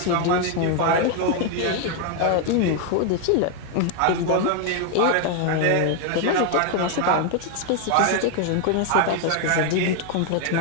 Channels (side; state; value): both; different; correlation 0.01